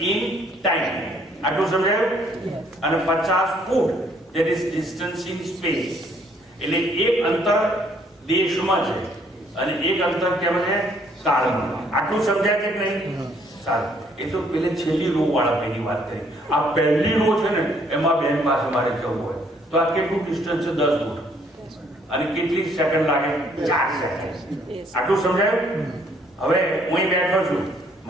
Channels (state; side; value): normal; both; correlation 0.65